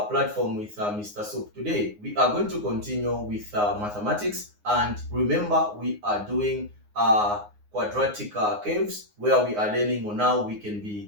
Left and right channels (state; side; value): late; left; 9.6 ms